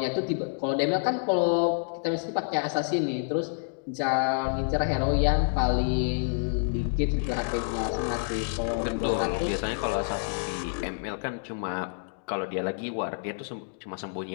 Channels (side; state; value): right; silent; digital silence